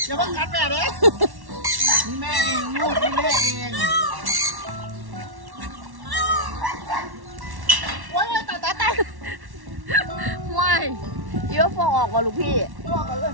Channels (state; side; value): late; left; 1.1 ms